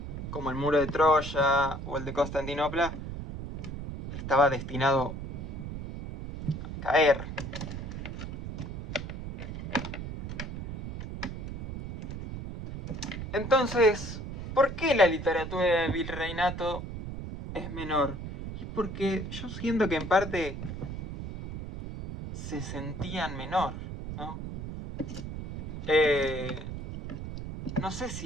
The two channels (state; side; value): noise; right; rumble, 7 dB below the sound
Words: como el muro de Troya o el de Constantinopla, estaba destinado a caer. Entonces, ¿por qué la literatura del virreinato es menor? Y porque yo siento que en parte se sentían menor, ¿no? No sé